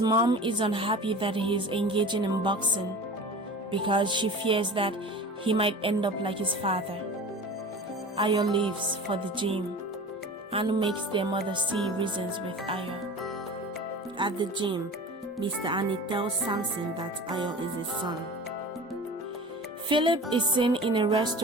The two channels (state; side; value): normal; both; correlation 0.37